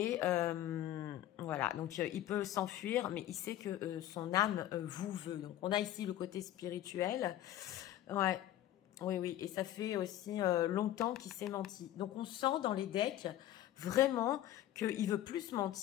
voilà, donc il peut s'enfuir, mais il sait que son âme vous veut. Donc on a ici le côté spirituel. Ouais, oui, oui. Et ça fait aussi longtemps qu'il s'est menti. Donc on sent dans les decks vraiment qu'il veut plus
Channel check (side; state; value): right; quieter; 13.1 dB